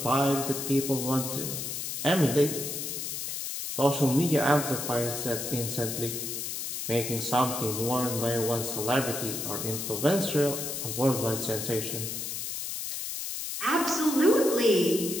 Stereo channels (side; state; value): left; noise; hiss, 5 dB below the sound